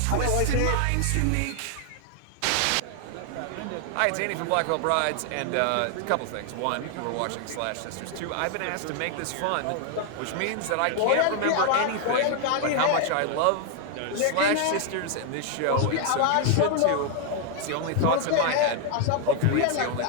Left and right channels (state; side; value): different; both; correlation 0.00